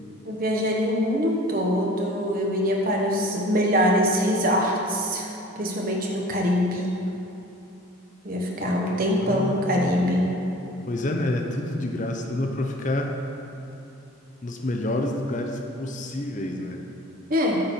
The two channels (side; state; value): both; normal; correlation 0.45